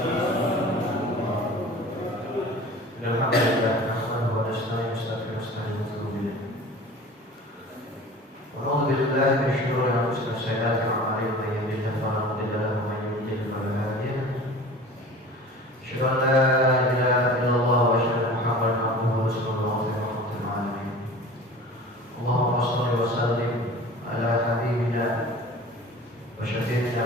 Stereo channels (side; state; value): both; normal; correlation 0.40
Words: Alhamdulillah, nahmaduhu wa nasta'inuhu wa nastaghfiruh wa na'udzu billahi min shururi anfusina wa sayyiati a'malina man yahdihillahu fala mudilla lahu wa man yudlil fala hadiya lahu. Asyhadu an la ilaha illallah wa asyhadu anna Muhammadan abduhu wa rasuluhu rahmatul alamin. Allahumma shalli wa sallim ala habibina wa syafi'ina